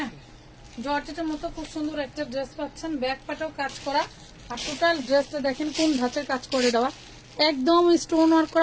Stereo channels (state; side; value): identical; both; correlation 1.00